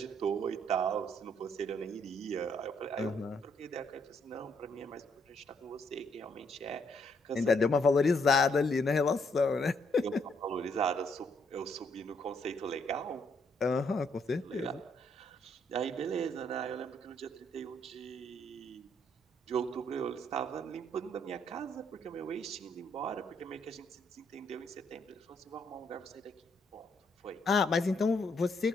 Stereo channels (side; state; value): both; normal; correlation 0.71